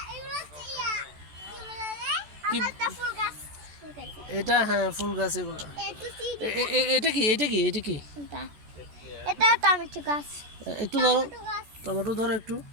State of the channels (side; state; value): left; late; 14 ms